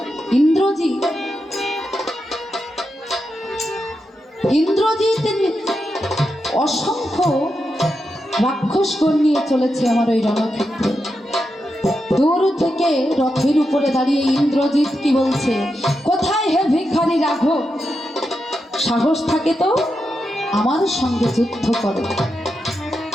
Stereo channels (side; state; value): both; normal; correlation 0.86